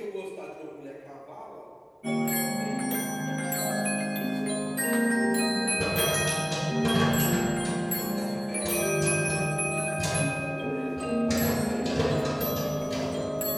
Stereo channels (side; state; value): both; identical; correlation 1.00